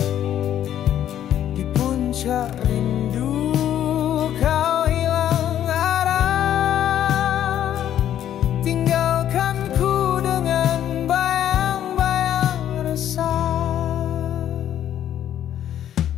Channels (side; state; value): right; quieter; 10.9 dB